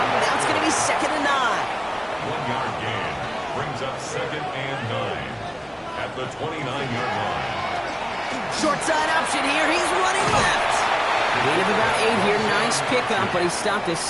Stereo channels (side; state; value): both; identical; correlation 1.00